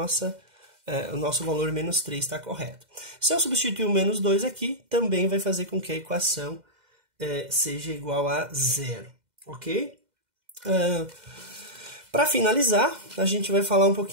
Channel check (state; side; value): late; left; 2.1 ms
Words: valor menos 3 está correto. Se eu substituir o menos 2 aqui, também vai fazer com que a equação seja igual a 0, ok? Para finalizar, a gente vai falar um